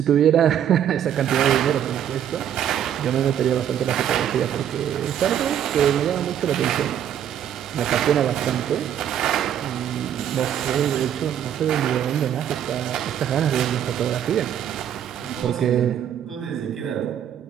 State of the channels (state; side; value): quieter; left; 9.9 dB